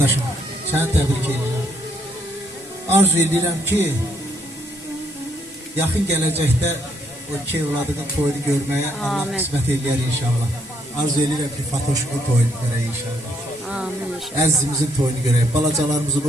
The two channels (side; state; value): both; normal; correlation 0.72